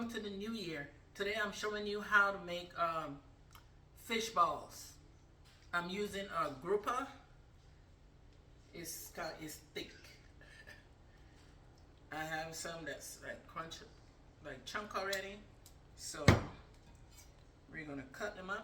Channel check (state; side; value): identical; both; correlation 1.00